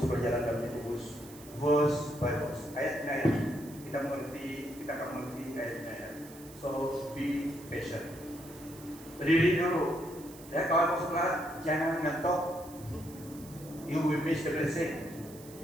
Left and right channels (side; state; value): right; noise; hiss, 19 dB below the sound